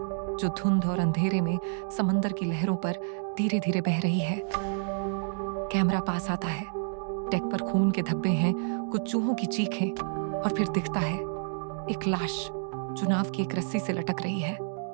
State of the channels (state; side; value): silent; left; digital silence